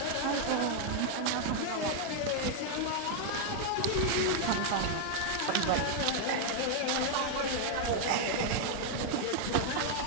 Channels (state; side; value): different; both; correlation 0.00